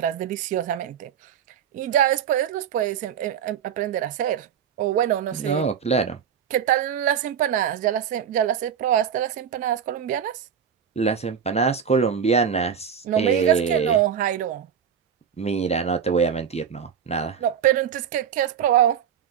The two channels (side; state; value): left; quieter; 8.0 dB